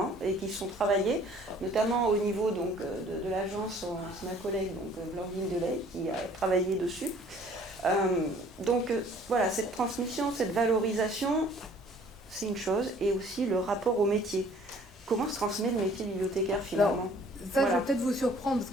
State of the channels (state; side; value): normal; both; correlation 0.55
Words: et qui sont travaillés, notamment au niveau donc, de l'agence, c'est ma collègue donc, Blandine Delay qui a travaillé dessus. Donc voilà, cette transmission, cette valorisation, c'est une chose, et aussi le rapport au métier. Comment se transmet le métier bibliothécaire finalement? Alors, ça, voilà. Je vais peut-être vous surprendre, parce